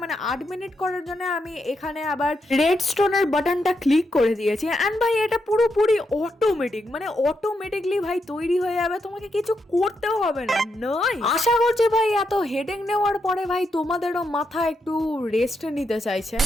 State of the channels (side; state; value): both; normal; correlation 0.82